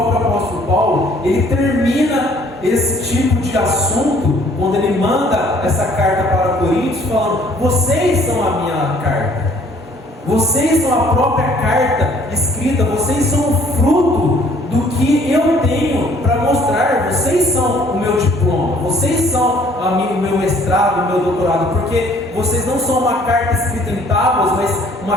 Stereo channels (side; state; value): both; normal; correlation 0.59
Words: apóstolo Paulo, ele termina esse tipo de assunto, quando ele manda essa carta para Coríntios, falando, vocês são a minha carta. Vocês são a própria carta escrita, vocês são o fruto do que eu tenho para mostrar, vocês são o meu diploma, vocês são o meu mestrado, o meu doutorado, porque vocês não são uma carta escrita em tábuas, mas uma